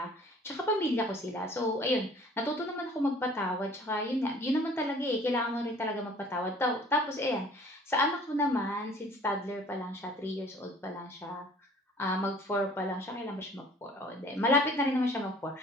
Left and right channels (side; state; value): both; normal; correlation 0.52